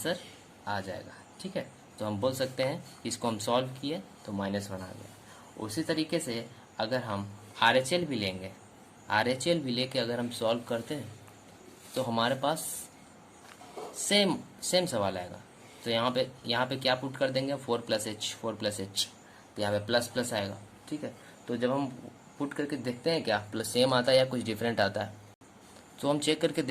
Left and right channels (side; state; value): both; identical; correlation 1.00